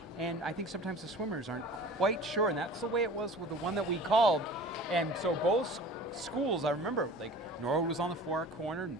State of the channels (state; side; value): normal; both; correlation 0.42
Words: And I think sometimes the swimmers aren't quite sure, and that's the way it was with the one that we called. And so both schools, I remember, like Norwood was on the far corner,